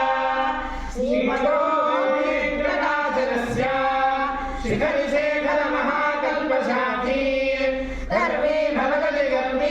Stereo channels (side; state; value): both; identical; correlation 1.00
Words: శిఖరిశేఖర మహాకల్పశాఖీ ధర్మే భవగతి